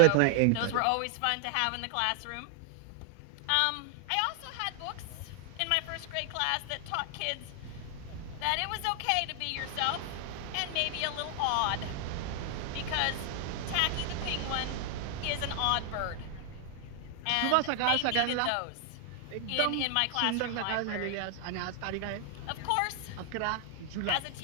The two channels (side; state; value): both; different; correlation 0.00